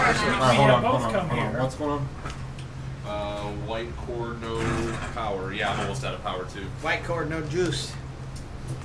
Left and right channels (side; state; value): both; identical; correlation 1.00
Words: Alright, now. We hold have on, both hold on, come hold on. here. What's going on? White core, no power. Yeah, I'm almost out of power too. White cord, no juice.